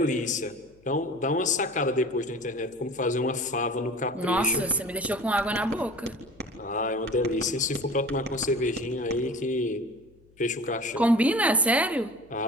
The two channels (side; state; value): left; noise; hum, 29 dB below the sound